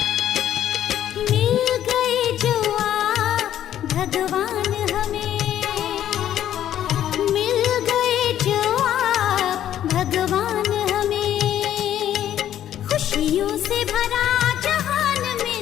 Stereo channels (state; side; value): quieter; right; 11.3 dB